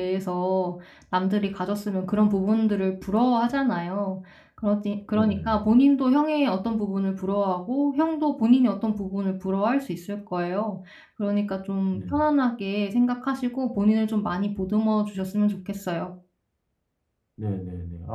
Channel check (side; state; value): both; identical; correlation 1.00